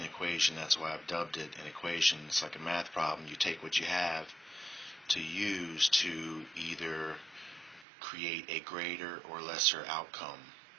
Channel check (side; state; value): left; drops out; at 7.9 s